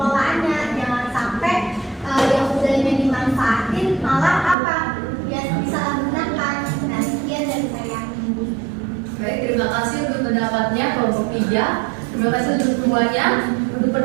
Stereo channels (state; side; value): drops out; left; at 4.5 s